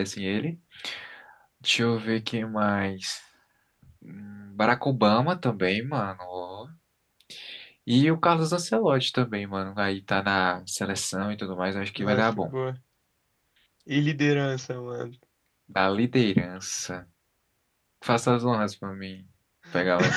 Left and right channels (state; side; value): identical; both; correlation 1.00